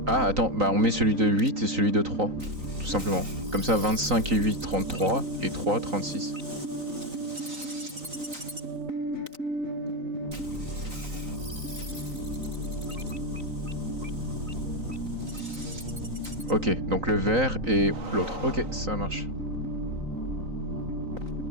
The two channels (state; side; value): late; left; 3.9 ms